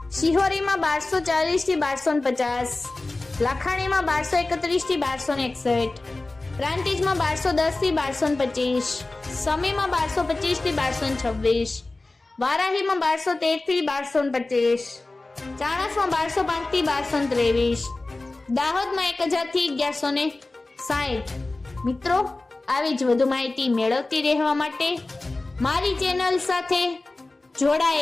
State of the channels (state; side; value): quieter; right; 3.1 dB